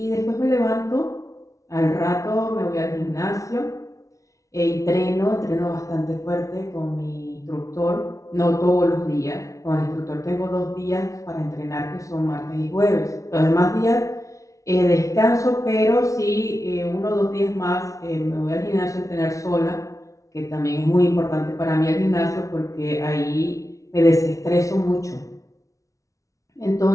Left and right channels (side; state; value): right; late; 0.16 ms